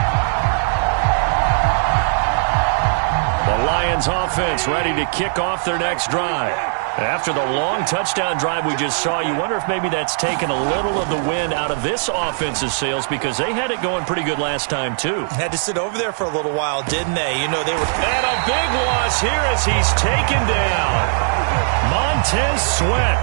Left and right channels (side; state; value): left; silent; digital silence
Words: The Lions offense ready to kick off their next drive. After the long touchdown drive we just saw, you wonder if maybe that's taken a little of the wind out of this offense's sails because they had it going pretty good last time, too. Had to sit over there for a little while, didn't they? You know, they were... And a big loss here as he's taken down. Montez Sweat,